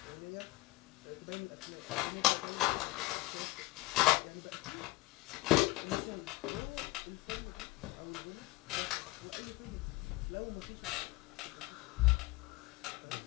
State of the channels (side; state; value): right; quieter; 21.3 dB